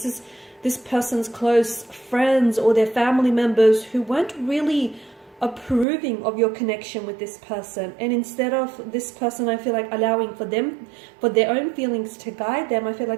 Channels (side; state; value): left; drops out; at 5.9 s